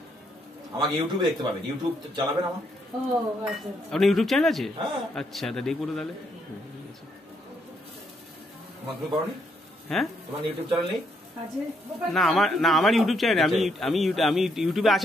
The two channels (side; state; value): both; normal; correlation 0.74